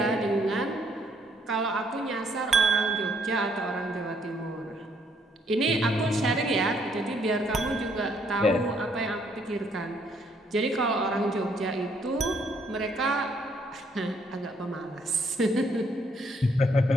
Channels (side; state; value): both; normal; correlation 0.68